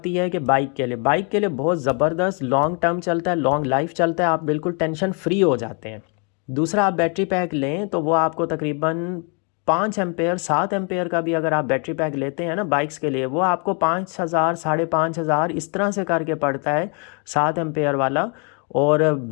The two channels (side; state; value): right; quieter; 36.7 dB